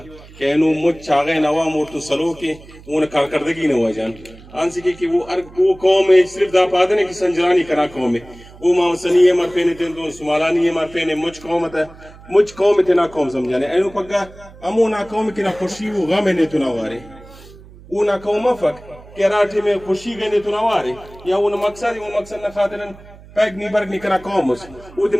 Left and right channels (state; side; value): noise; right; hum, 21 dB below the sound